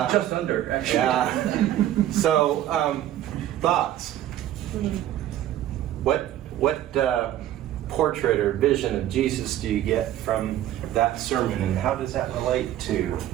under, actually. Yeah. So, thoughts? What portrait or vision of Jesus do you get from that sermon, and how does that relate to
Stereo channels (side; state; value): left; quieter; 12.7 dB